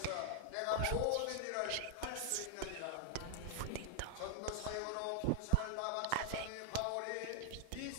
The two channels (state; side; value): different; both; correlation 0.00